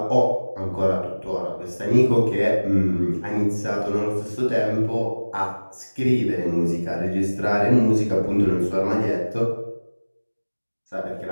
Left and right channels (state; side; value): inverted; both; correlation -1.00